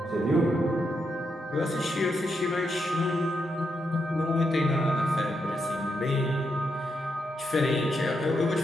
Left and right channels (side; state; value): both; normal; correlation 0.82